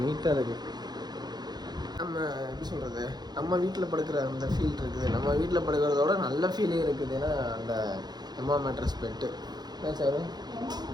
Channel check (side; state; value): left; late; 0.20 ms